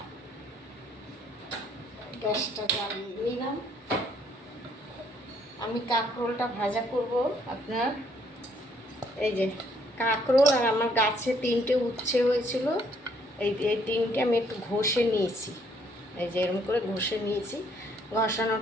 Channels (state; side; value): normal; both; correlation 0.67